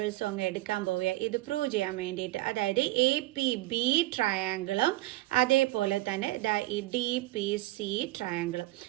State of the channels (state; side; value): quieter; left; 18.4 dB